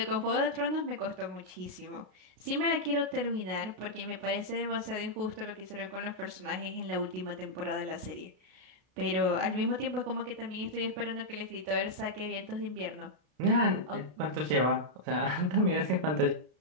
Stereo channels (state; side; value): late; left; 32 ms